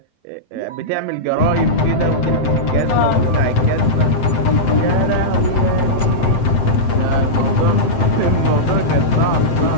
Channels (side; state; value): right; late; 7.8 ms